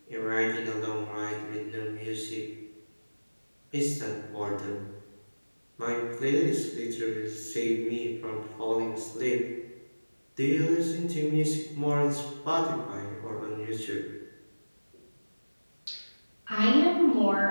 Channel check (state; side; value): inverted; both; correlation -1.00